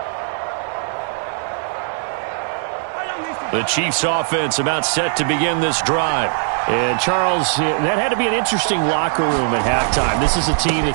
The Chiefs offense about set to begin this drive. And, Charles, that had to be an interesting locker room at halftime. This is a team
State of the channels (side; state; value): left; silent; digital silence